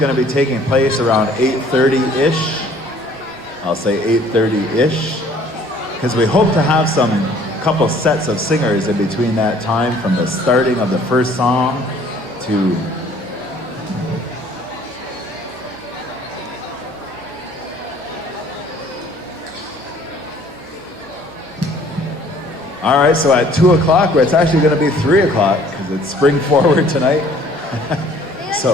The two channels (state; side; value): normal; both; correlation 0.56